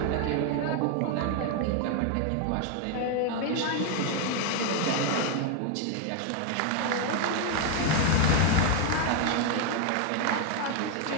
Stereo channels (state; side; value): different; both; correlation 0.01